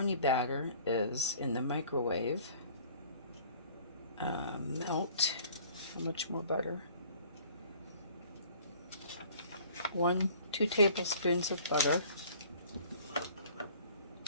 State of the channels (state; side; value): inverted; both; correlation -0.52